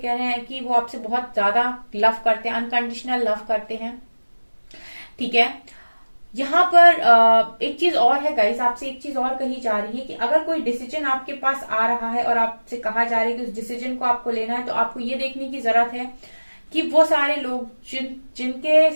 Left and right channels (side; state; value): both; inverted; correlation -1.00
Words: रहे हैं कि वो आपसे बहुत ज्यादा लव करते हैं, अनकंडीशनल लव करते हैं। ठीक है, यहाँ पर एक चीज और है गाइस, आपसे एक चीज और कही जा रही है कि अगर कोई डिसीजन आपके पास आ रहा है और आपसे कहा जा रहा है कि उस डिसीजन को आपको लेना है, तो आपको ये देखने की जरूरत है कि वो सारे लोग जिनके